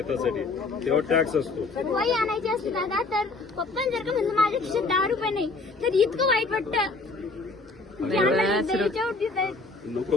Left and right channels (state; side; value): quieter; right; 3.6 dB